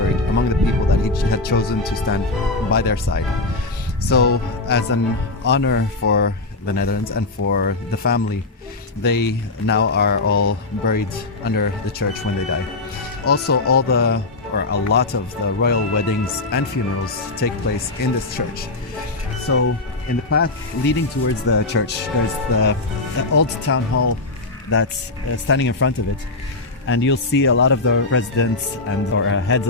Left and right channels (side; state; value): right; quieter; 3.2 dB